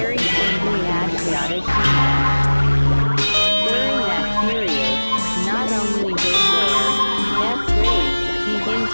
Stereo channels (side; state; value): both; inverted; correlation -1.00